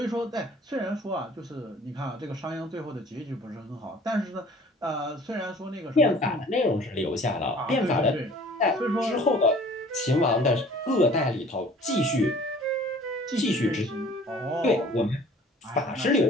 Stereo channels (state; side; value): normal; both; correlation 0.50